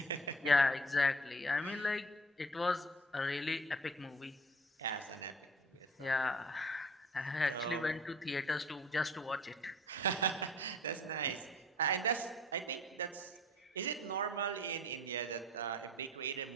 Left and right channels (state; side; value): normal; both; correlation 0.49